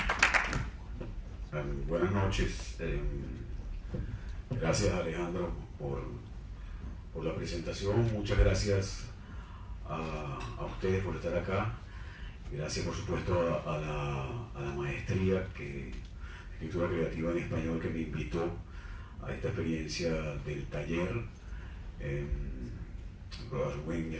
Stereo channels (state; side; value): identical; both; correlation 1.00